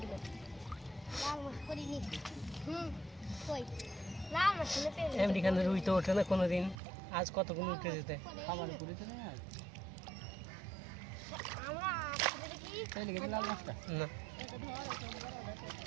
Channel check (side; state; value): left; drops out; at 6.8 s